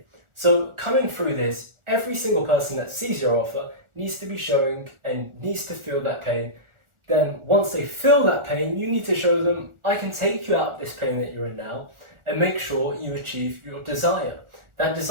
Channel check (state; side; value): late; left; 1.4 ms